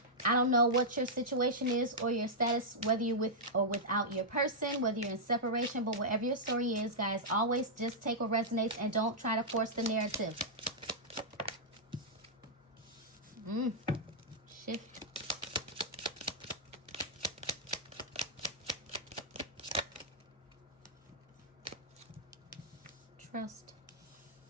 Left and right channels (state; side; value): normal; both; correlation -0.09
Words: I don't know what your situation is or your status, whether you're with or without your person, whether you're in separation, but whatever your story is, guys, always just take what resonates and don't try to force the narrative. Shift. Trust.